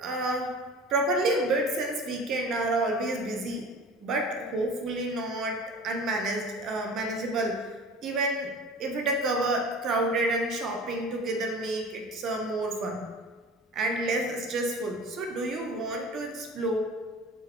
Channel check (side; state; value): both; normal; correlation 0.39